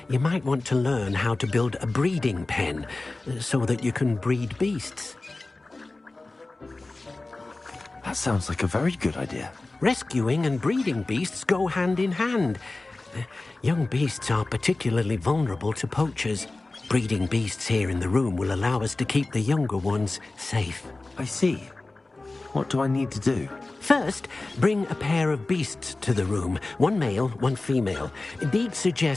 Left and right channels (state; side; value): quieter; right; 3.2 dB